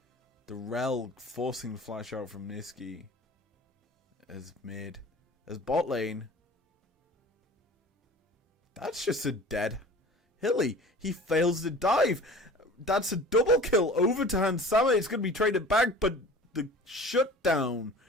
the Rel forcing the flash out from Niski. As mid. As bot lane, that's just a dead Hilly. He fails the dive. That's a double kill over to Hansama. It's going to be traded back, but the shutdown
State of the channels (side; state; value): both; normal; correlation 0.42